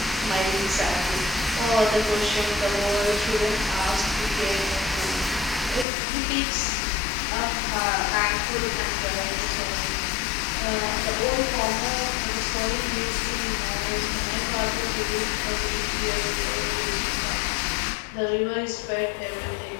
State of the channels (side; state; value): right; drops out; at 5.9 s